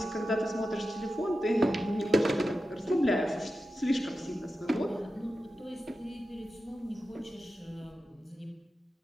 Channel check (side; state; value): both; normal; correlation 0.92